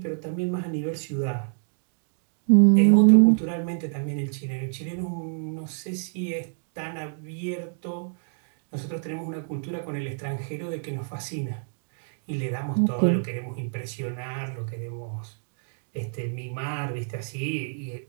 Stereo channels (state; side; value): silent; left; 60 dB below the other